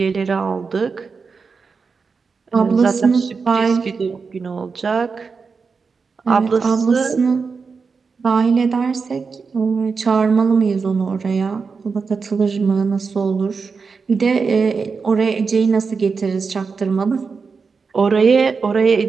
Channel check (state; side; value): quieter; left; 5.0 dB